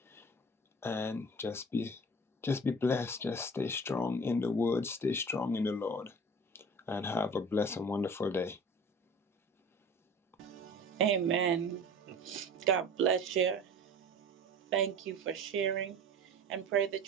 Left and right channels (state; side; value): normal; both; correlation 0.40